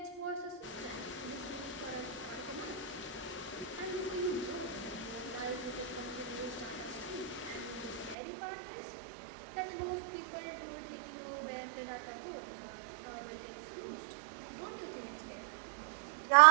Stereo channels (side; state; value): left; drops out; at 8.2 s